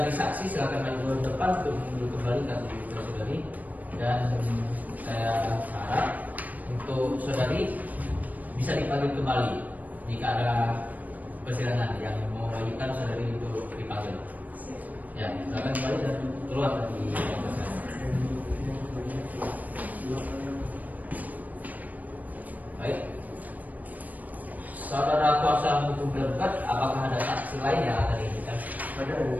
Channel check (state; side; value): late; left; 0.078 ms